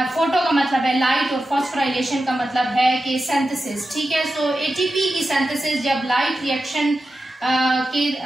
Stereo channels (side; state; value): both; normal; correlation 0.91